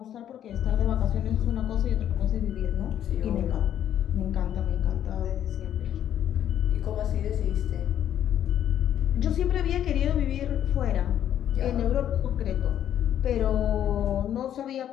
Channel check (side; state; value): right; quieter; 10.5 dB